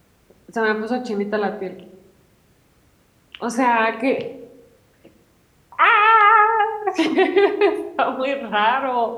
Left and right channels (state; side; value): identical; both; correlation 1.00